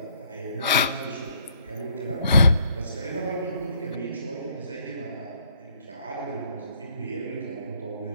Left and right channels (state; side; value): inverted; both; correlation -0.66